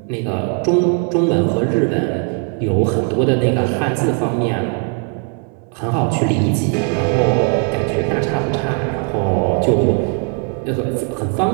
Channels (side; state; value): left; quieter; 35.6 dB